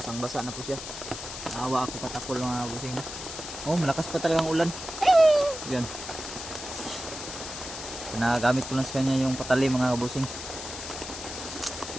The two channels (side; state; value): left; noise; hiss, 9 dB below the sound